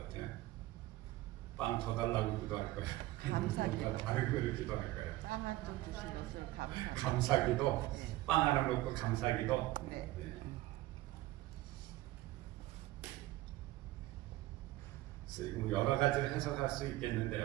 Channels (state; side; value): quieter; left; 17.1 dB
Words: 빵 더 달라고 기도할까요? 뭔가 다른 거를 기도할까요? 감사기도. 네. 빵 하나 놓고 감사기도. 네. 여러 가지를 해석할 수